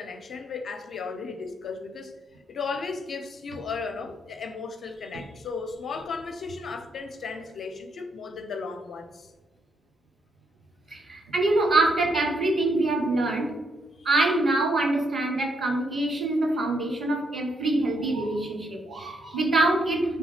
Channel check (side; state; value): both; normal; correlation 0.76